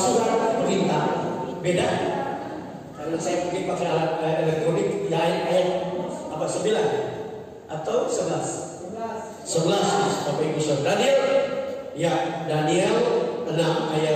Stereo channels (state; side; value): identical; both; correlation 1.00